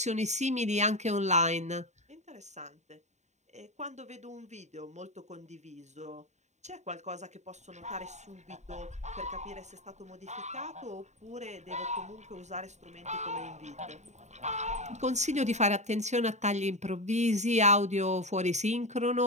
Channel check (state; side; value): late; left; 0.34 ms